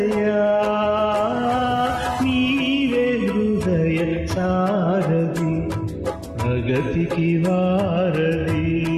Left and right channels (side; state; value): both; identical; correlation 1.00